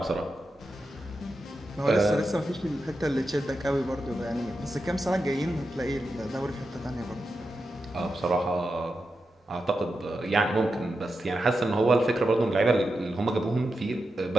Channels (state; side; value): normal; both; correlation 0.89